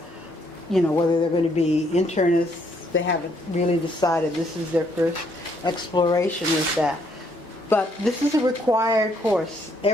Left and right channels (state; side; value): normal; both; correlation 0.70